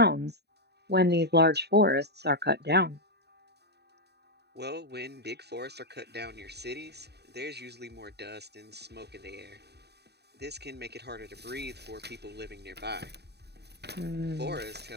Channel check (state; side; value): late; left; 0.48 ms